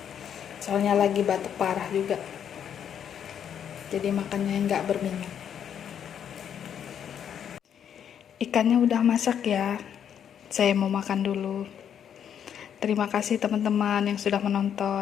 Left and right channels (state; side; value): quieter; right; 8.8 dB